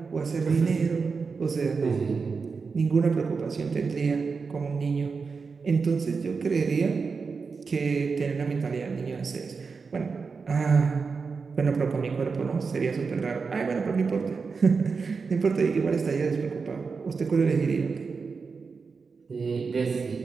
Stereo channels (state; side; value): quieter; left; 5.0 dB